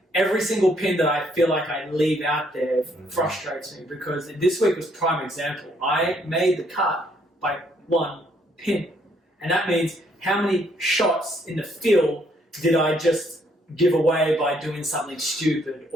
every single pin that I feel like I leave out there frustrates me, because this week was prime example. I made the cut by 1 pin, and that means how many shots in the field did I just give away by doing something stupid?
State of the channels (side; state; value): both; normal; correlation 0.68